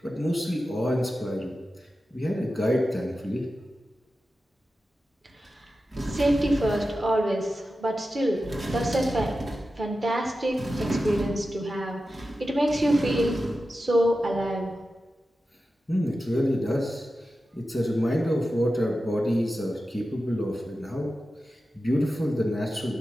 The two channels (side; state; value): both; normal; correlation 0.92